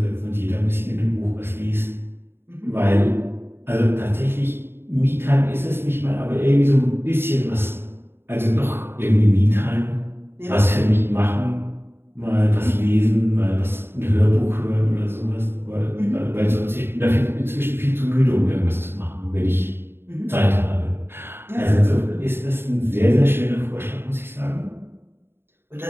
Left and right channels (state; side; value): late; left; 0.11 ms